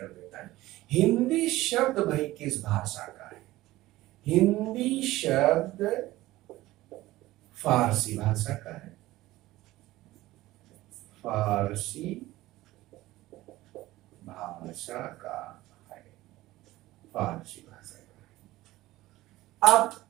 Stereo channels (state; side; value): quieter; left; 17.2 dB